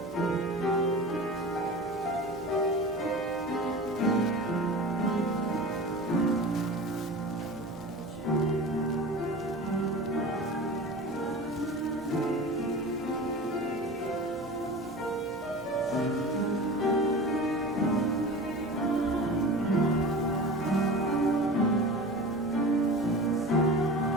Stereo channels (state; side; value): normal; both; correlation 0.34